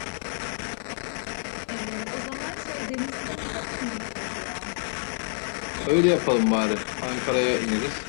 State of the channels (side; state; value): right; silent; 60 dB below the other